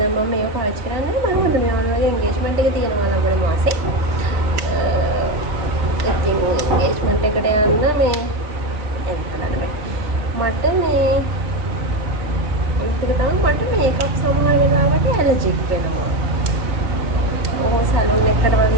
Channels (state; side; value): late; left; 3.9 ms